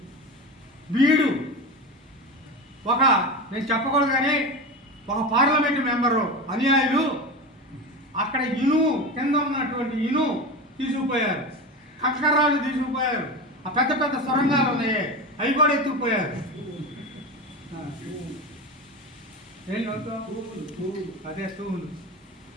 వీడు నేను చెప్పకూడదు కానీ ఒక పార్లమెంటు మెంబరు అనుయాయులు అక్కడ కింద ఉన్నటువంటి తీసుకుపోయారు, కంకర్రాళ్ళు తీసుకుపోయారు, ఆ పెద్ద పెద్ద సొరంగాలు ఉన్నాయి అవి కూడా ఎత్తుకుపోయారు. అదే తూములు.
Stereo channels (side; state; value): both; normal; correlation 0.24